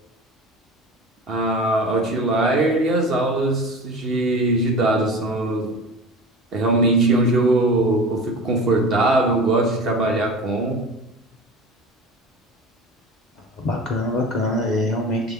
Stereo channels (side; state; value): both; normal; correlation 0.34